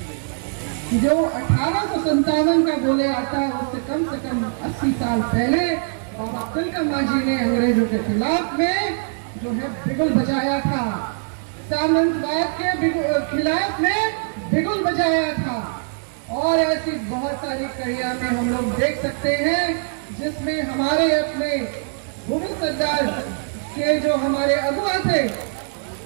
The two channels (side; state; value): left; silent; digital silence